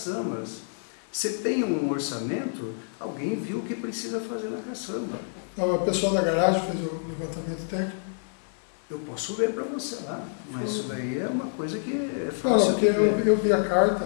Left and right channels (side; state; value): right; silent; 60 dB below the other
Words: Você tem um orçamento, alguém viu o que precisa fazer na caçamba. Não, o pessoal da garagem fez o levantamento técnico? Eu posso ver para você lá, mas isso daí é uma coisa que é fácil. Não, porque eu vi a